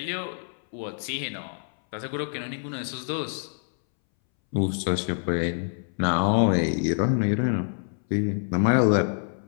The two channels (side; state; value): right; silent; 61 dB below the other